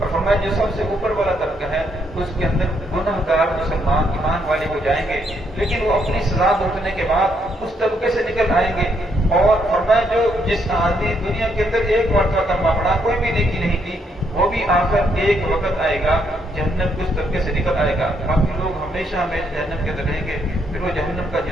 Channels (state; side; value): normal; both; correlation 0.74